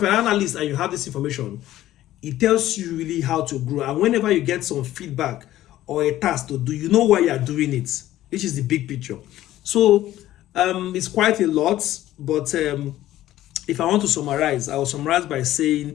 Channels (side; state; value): right; quieter; 14.2 dB